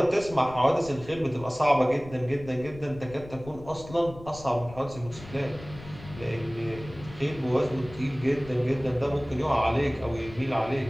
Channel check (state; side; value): noise; left; rumble, 16 dB below the sound